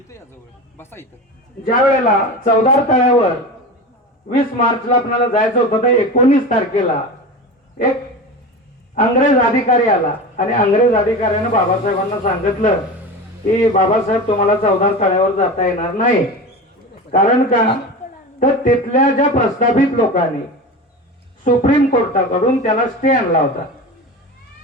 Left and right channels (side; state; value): both; normal; correlation 0.28